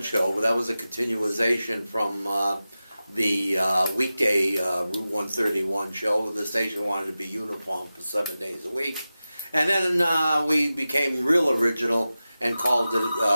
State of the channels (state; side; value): inverted; both; correlation -0.95